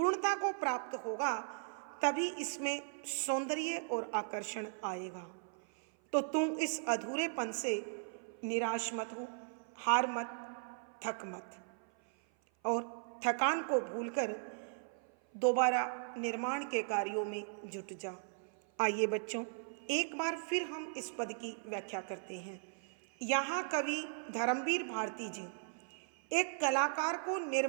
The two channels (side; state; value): left; silent; 53 dB below the other